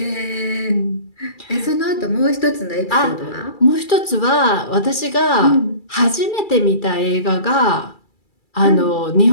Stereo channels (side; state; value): right; late; 2.3 ms